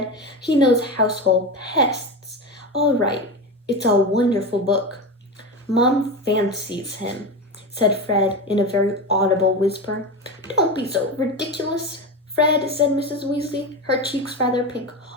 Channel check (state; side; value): normal; both; correlation 0.21